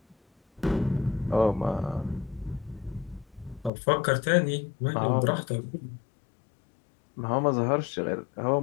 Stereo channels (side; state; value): right; drops out; at 3.7 s